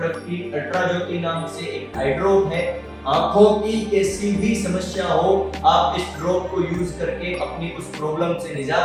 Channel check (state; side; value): identical; both; correlation 1.00